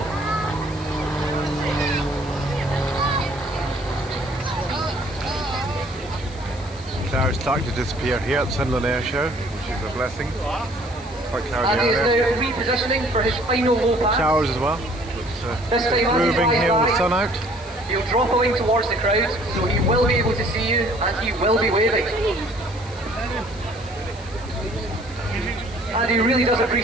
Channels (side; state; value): left; noise; hiss, 22 dB below the sound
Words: Clouds starting to disappear here at Sunderland Air Show, which is a blessing. Quite cloudy Andy is out there. now repositioning for his final low pass. Showers as well. This time Andy Moving flies here with the by. sun out. He'll drop a wing towards the crowd, so he will be able to see you and he will be waving. And he really does